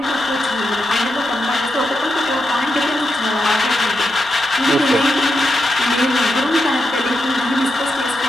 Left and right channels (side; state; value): both; normal; correlation 0.85